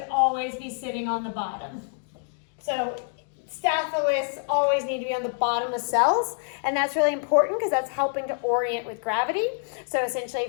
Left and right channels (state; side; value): silent; right; 60 dB below the other